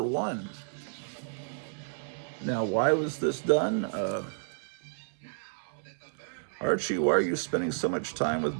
Now, why was this done? Archie, why are you spending so much time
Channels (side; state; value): left; silent; 57 dB below the other